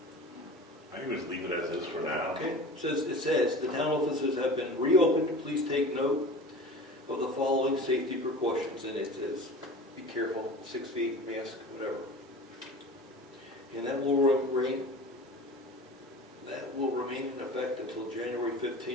I think we just leave it as is for now. Okay, it says the town offices have been reopened. Please take note of the following safety precautions. And it says, be careful, 6 feet, mask, whatever. And that will remain in effect until January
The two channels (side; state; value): both; normal; correlation 0.37